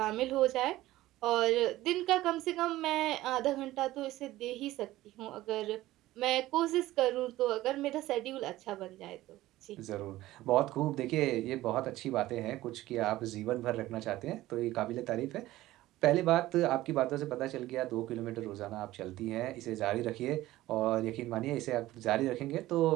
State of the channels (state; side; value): quieter; left; 16.3 dB